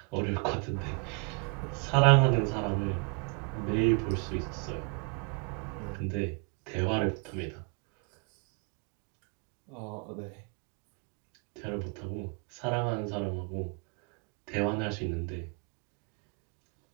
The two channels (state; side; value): quieter; left; 33.5 dB